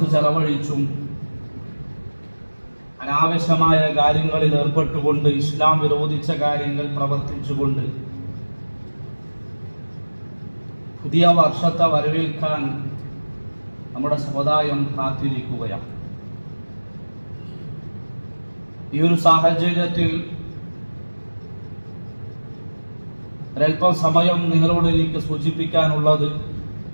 ചെലവഴിച്ചും അനാവശ്യമായ കാര്യങ്ങളിൽ ഏർപ്പെട്ടുകൊണ്ട് ഇസ്ലാം വിരോധിച്ച കാര്യങ്ങൾ പ്രവർത്തിച്ചുകൊണ്ട് പുതിയ വർഷത്തെ വരവേൽക്കാൻ നമ്മുടെ സമുദായം കാത്തിരിക്കുകയാണ്. ഈ ഒരു സാഹചര്യത്തിൽ ഒരൽപ്പം സമയം നിങ്ങളോട് എനിക്ക് സൂചിപ്പിക്കാനുള്ളത്,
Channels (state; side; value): inverted; both; correlation -1.00